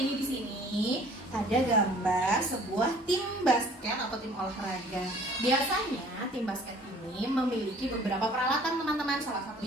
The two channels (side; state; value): both; normal; correlation 0.53